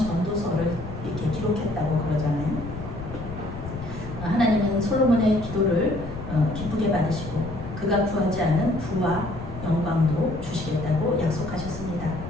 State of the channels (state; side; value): noise; left; rumble, 10 dB below the sound